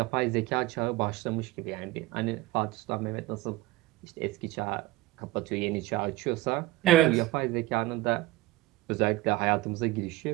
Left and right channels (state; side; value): quieter; left; 18.2 dB